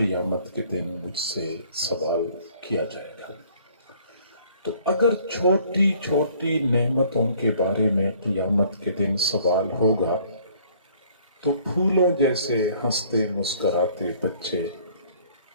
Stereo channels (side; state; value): both; inverted; correlation -0.58